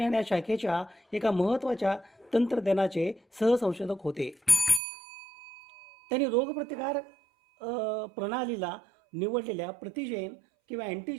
या शाखेच्या एका महत्त्वाच्या तंत्रज्ञानाचे सहसंशोधक होते. त्यांनी रोगप्रतिकार प्रणालीला निवडलेल्या प्रतिजेन किंवा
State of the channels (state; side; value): drops out; left; at 4.8 s